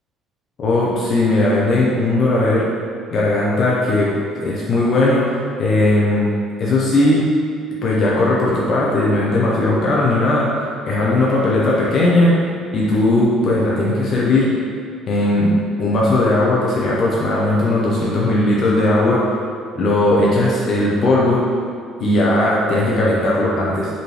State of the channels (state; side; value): normal; both; correlation 0.63